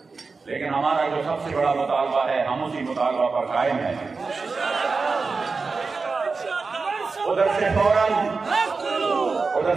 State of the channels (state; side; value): quieter; left; 4.4 dB